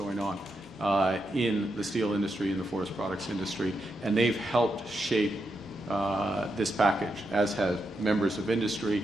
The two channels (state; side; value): normal; both; correlation 0.84